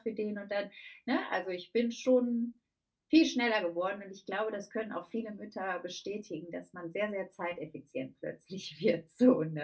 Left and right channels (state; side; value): identical; both; correlation 1.00